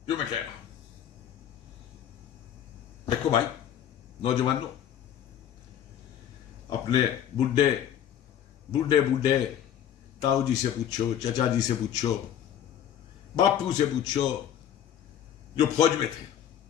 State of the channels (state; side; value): quieter; right; 10.0 dB